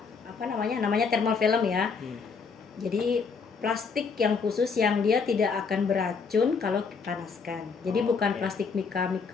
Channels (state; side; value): quieter; right; 5.3 dB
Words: apa namanya thermal film ya. Jadi plastik yang khusus yang dia tidak akan beracun kalau dipanaskan. Jadi bukan plastik mika